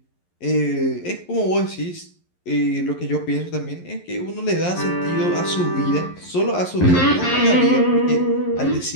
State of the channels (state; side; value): late; right; 11 ms